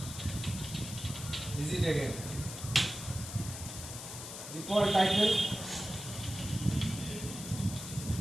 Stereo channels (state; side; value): noise; left; hiss, 9 dB below the sound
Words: visit again. Default title